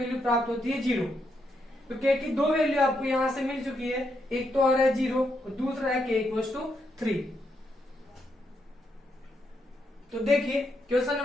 प्राप्त होती है 0। तो k की दो वैल्यू आपको यहां से मिल चुकी है, एक तो आ रहा है 0 और दूसरा है k इक्वल टू 3। तो देखिए क्वेश्चन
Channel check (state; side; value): normal; both; correlation 0.80